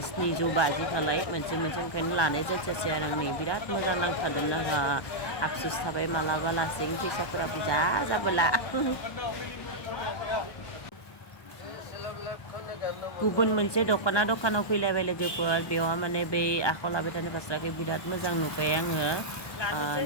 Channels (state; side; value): late; right; 1.2 ms